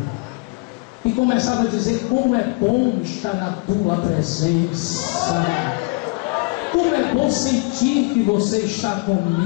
E começava a dizer: como é bom estar na tua presença. Como é bom sentir que você está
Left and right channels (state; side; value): quieter; right; 30.2 dB